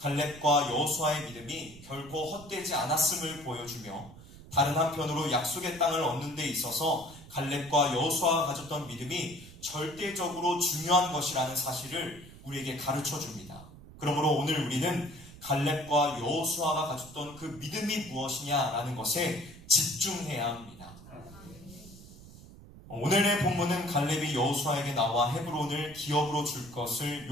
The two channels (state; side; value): noise; right; rumble, 18 dB below the sound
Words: 여호수아의 믿음이 결코 헛되지 않았음을 보여주며, 다른 한편으로 약속의 땅을 얻는 데 있어서 갈렙과 여호수아가 가졌던 믿음이 절대적으로 중요한 것이라는 사실을 우리에게 가르쳐 줍니다. 그러므로 오늘 우리는 갈렙과 여호수아가 가졌던 그 믿음이 무엇이냐라는 것에 집중해야 합니다. 오늘의 본문은 갈렙이 여호수아에게 나와 헤브론을 기업으로 줄 것을